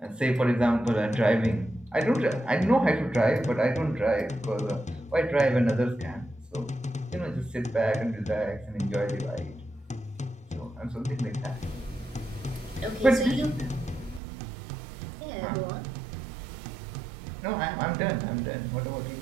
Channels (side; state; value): left; drops out; at 14.2 s